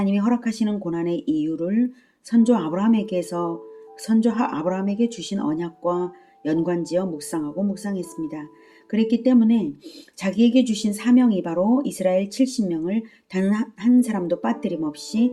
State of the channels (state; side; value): identical; both; correlation 1.00